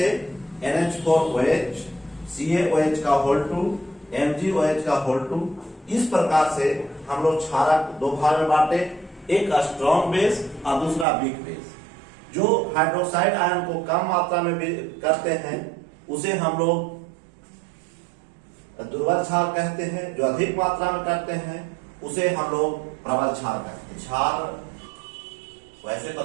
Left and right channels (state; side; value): drops out; left; at 11.1 s